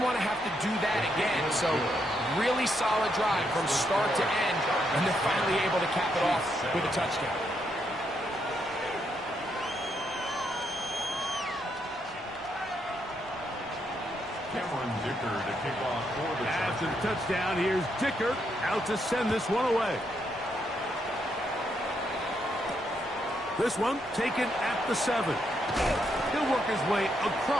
to have to do that again. So really solid drive from start to end, and they're finally able to cap it off with a touchdown. Cameron Dicker to kick off for the Chargers. After the touchdown, here's Dicker out to send this one away. This one taken at the 7. He'll work his way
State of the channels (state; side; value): normal; both; correlation 0.78